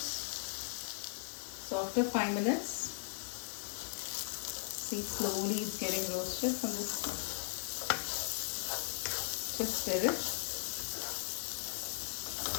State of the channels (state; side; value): silent; right; digital silence